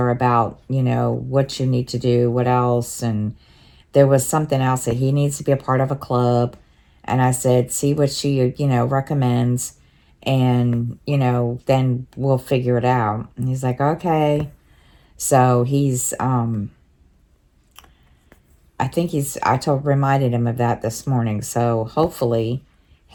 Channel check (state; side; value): identical; both; correlation 1.00